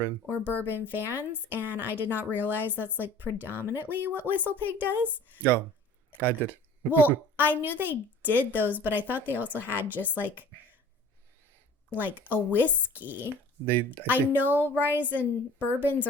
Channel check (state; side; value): normal; both; correlation 0.46